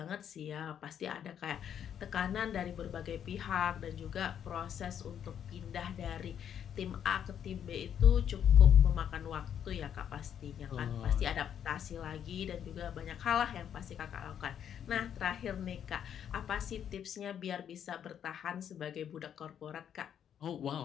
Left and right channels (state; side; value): quieter; right; 9.0 dB